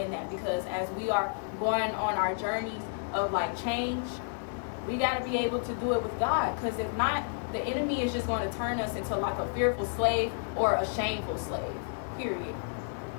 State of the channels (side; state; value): right; silent; digital silence